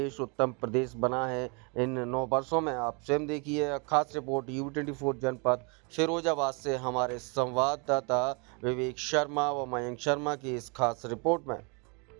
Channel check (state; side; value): quieter; left; 33.2 dB